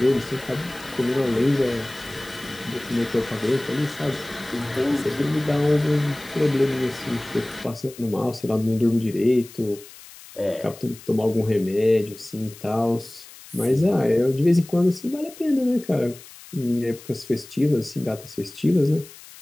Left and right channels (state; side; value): noise; left; hiss, 19 dB below the sound